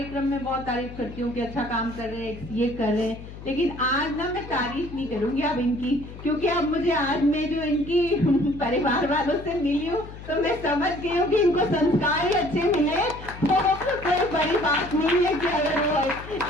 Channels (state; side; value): noise; left; hum, 14 dB below the sound